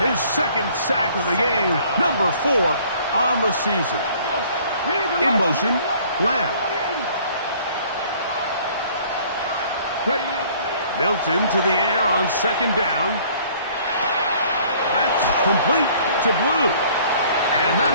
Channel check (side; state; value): both; inverted; correlation -0.56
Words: his second sack of the game, number 4 on the season. In motion, Lamb. Milton to the air on second down. That's complete to Blue. And